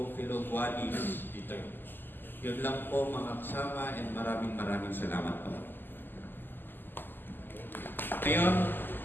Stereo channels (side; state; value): right; late; 0.092 ms